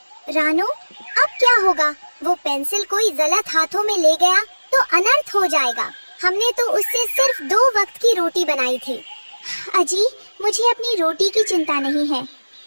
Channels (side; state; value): both; inverted; correlation -1.00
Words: रानो, अब क्या होगा? वो पेंसिल कोई गलत हाथों में ले गया तो अनर्थ हो जाएगा। हमने तो उससे सिर्फ 2 वक्त की रोटी बनाई थी। अजी, मुझे अपनी रोटी की चिंता नहीं है।